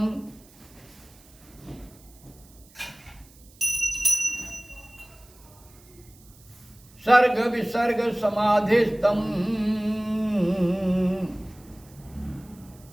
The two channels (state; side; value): noise; right; hiss, 26 dB below the sound